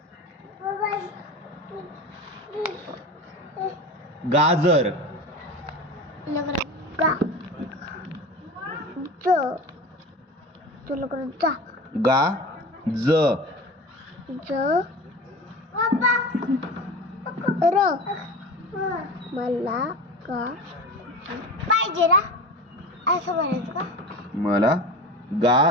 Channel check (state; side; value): normal; both; correlation 0.32